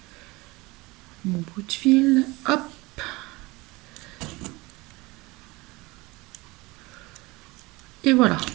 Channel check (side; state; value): left; quieter; 22.8 dB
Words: mon bout de fil. Hop. Et voilà.